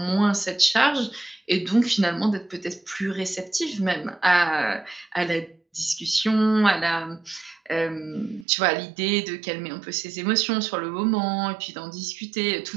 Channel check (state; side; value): drops out; left; at 8.5 s